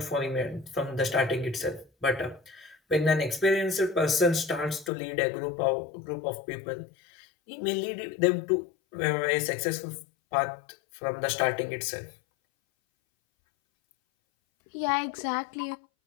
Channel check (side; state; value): right; drops out; at 4.9 s